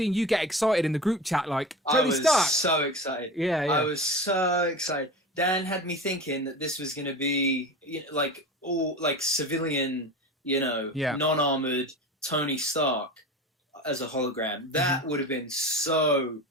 you get excited in the group chat, like, Tony Stark. I was so excited. Yeah. I was so excited. Dan had me thinking that this was going to be all like civilian, non-armored Tony Stark as a hologram. That would have been so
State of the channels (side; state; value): both; normal; correlation 0.31